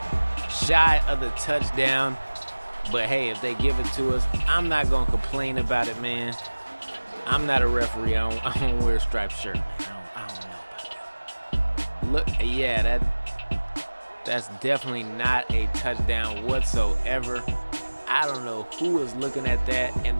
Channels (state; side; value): inverted; both; correlation -1.00